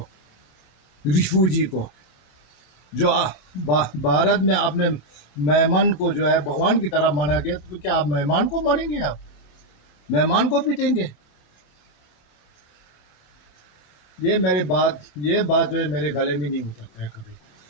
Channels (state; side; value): late; right; 28 ms